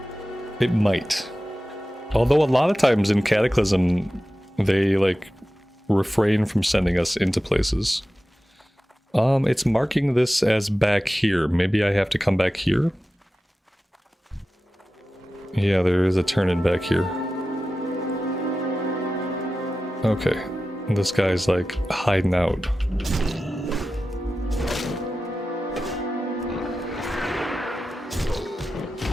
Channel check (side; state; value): both; normal; correlation 0.94